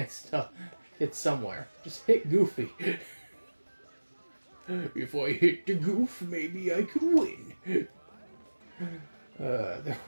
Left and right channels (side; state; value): both; inverted; correlation -1.00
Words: to hit somewhere. Just hit Goofy. If I hit the Goof, maybe I could win. There